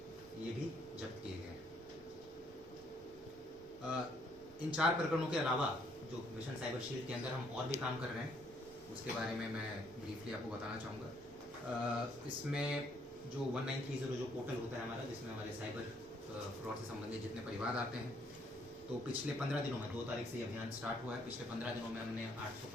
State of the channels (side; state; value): both; normal; correlation 0.67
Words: ये भी जब्त किए गए हैं। इन 4 प्रकरणों के अलावा जो मिशन साइबर शील्ड के अंदर हम और भी काम कर रहे हैं, उसके बारे में मैं ब्रीफली आपको बताना चाहूँगा। इसमें जो 1930 जो पोर्टल होता है हमारा, जिसमें हमारे साइबर फ्रॉड से संबंधित जितने परिवाद आते हैं, तो पिछले 15 दिनों में 2 तारीख से ये अभियान स्टार्ट हुआ है। पिछले 15 दिनों में हमने